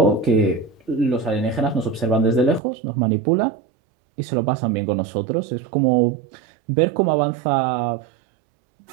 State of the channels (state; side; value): drops out; left; at 2.6 s